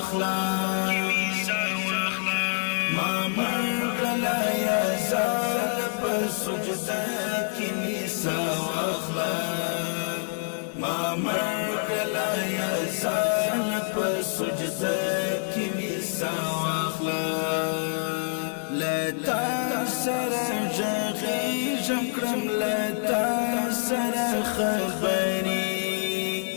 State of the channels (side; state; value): right; silent; 59 dB below the other